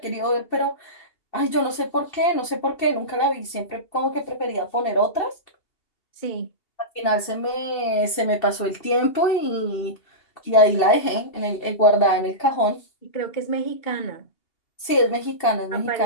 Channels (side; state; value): right; late; 2.7 ms